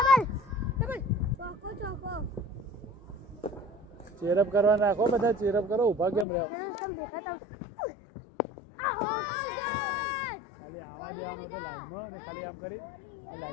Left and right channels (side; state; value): right; drops out; at 6.2 s